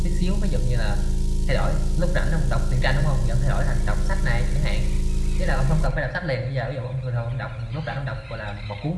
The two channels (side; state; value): both; identical; correlation 1.00